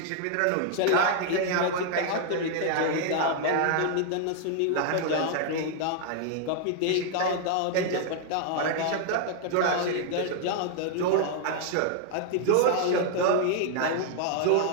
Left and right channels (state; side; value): different; both; correlation 0.00